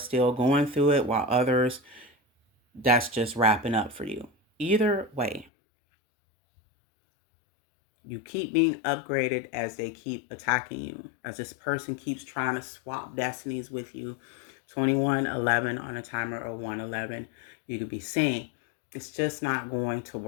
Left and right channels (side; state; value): right; drops out; at 5.5 s